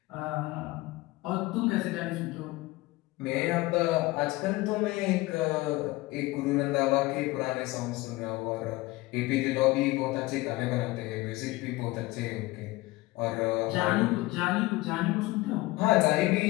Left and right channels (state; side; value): quieter; right; 20.2 dB